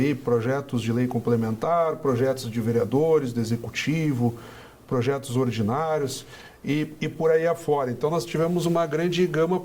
projetos de lei complementar, projetos de vereadores, do executivo, projetos ordinários e por aí afora. Então, nós tivemos uma grande gama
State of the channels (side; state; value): both; identical; correlation 1.00